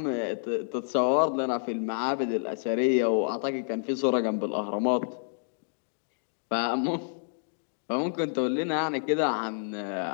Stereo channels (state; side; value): silent; right; digital silence